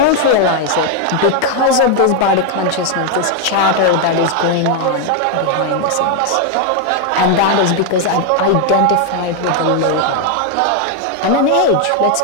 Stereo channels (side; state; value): both; different; correlation 0.01